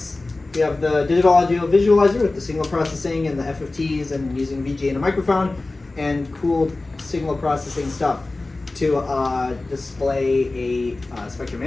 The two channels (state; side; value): quieter; right; 3.2 dB